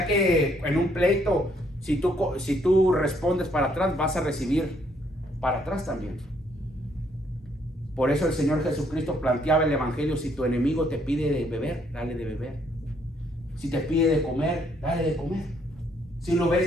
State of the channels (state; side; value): normal; both; correlation 0.69